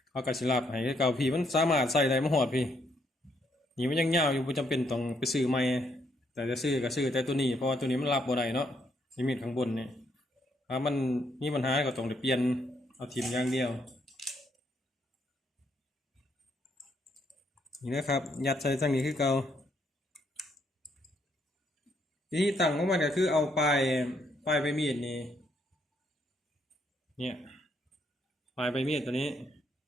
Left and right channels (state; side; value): normal; both; correlation 0.73